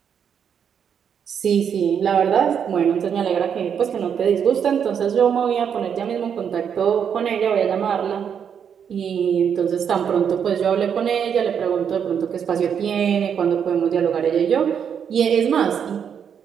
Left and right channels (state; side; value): quieter; left; 7.8 dB